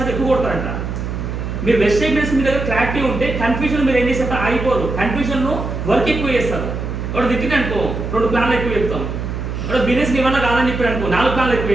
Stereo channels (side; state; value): right; noise; hum, 5 dB below the sound